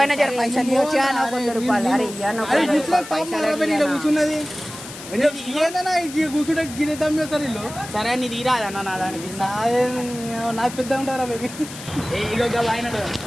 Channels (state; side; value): noise; left; hiss, 13 dB below the sound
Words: జర పైసలు ఇవ్వచ్చా నాకు 100 రూపాయలు అరే కూర్చున్నది ఏదన్నా కూర్చుంటే గిరిద్దాం చేస్తారు వీళ్ళు. సరే నీ తీరాదన్న నా దానికి నాకు పెద్ద ఉంటారా బేబీ